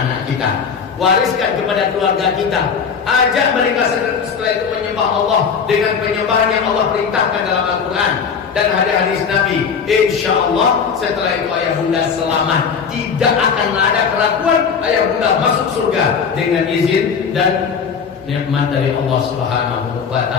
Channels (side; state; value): right; quieter; 6.3 dB